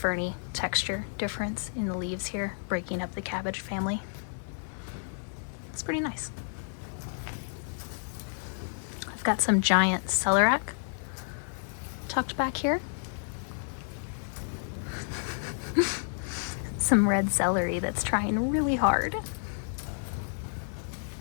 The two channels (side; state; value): right; silent; digital silence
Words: texture difference in the leaves here, breaking up the cabbage family. It's pretty nice. I've got some giant celeriac tucked back here. Some red celery that's trying really hard.